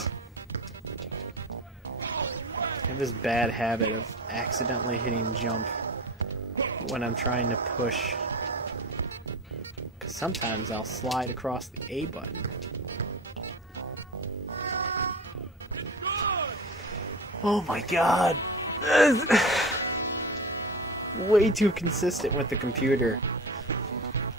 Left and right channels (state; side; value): normal; both; correlation 0.30